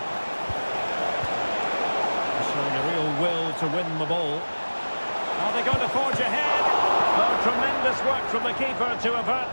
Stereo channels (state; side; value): inverted; both; correlation -1.00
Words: Showing a real will to win the ball. Are they going to forge ahead? Oh, tremendous work from the keeper to